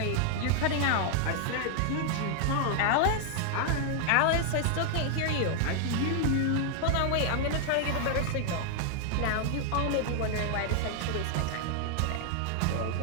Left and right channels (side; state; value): both; different; correlation 0.00